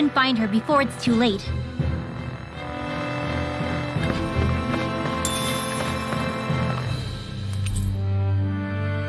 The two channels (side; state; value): both; identical; correlation 1.00